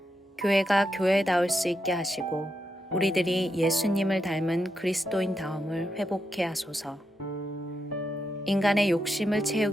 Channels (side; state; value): both; normal; correlation 0.84